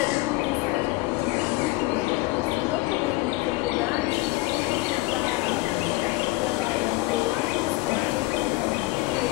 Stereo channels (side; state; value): right; quieter; 20.9 dB